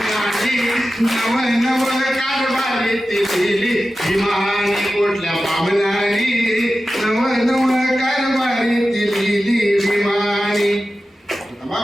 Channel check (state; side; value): normal; both; correlation 0.94